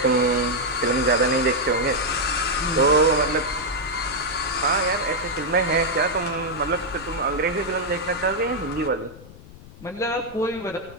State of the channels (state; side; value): noise; left; rumble, 19 dB below the sound